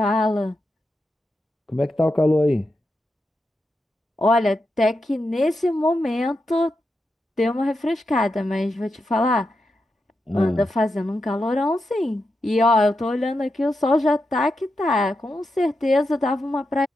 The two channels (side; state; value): both; normal; correlation 0.87